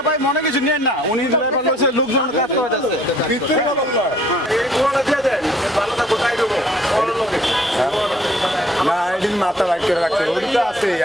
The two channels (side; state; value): right; noise; rumble, 30 dB below the sound